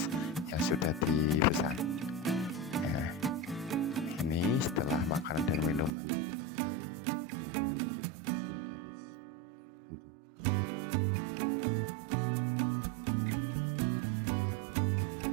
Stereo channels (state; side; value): drops out; left; at 5.9 s